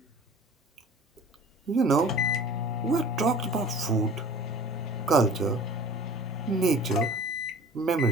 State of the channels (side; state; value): both; normal; correlation 0.44